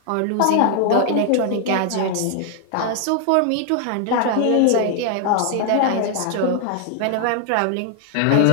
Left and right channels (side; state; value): both; different; correlation 0.00